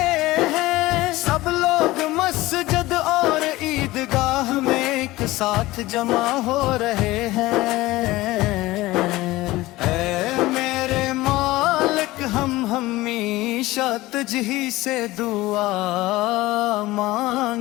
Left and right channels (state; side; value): quieter; right; 18.7 dB